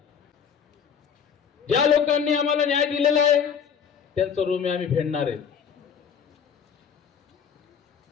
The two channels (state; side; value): quieter; right; 7.3 dB